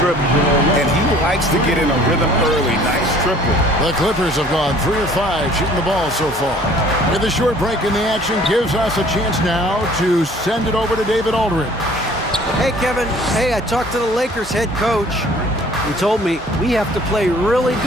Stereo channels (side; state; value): both; normal; correlation 0.53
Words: And he likes to get in a rhythm early. Nice triple. The Clippers have gone 3 of 5 shooting the ball so far. With a short break in the action gives us a chance now to send it over to David Aldridge. Hey, Kevin. Hey, I talked to the Lakers head coach. He told me we have to play really